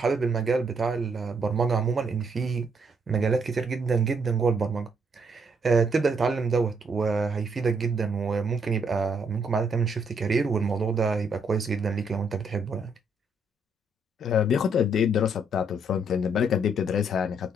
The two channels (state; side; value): normal; both; correlation 0.72